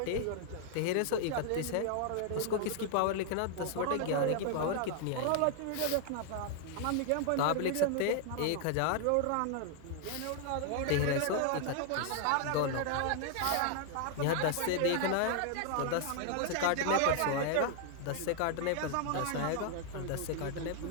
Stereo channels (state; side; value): different; both; correlation 0.00